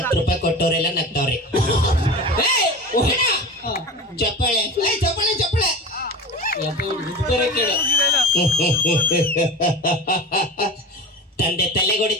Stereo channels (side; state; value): both; normal; correlation 0.32